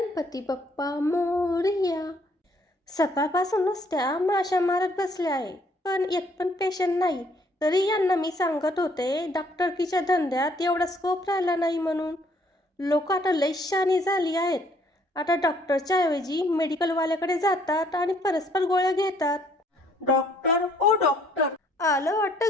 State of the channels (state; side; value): normal; both; correlation 0.64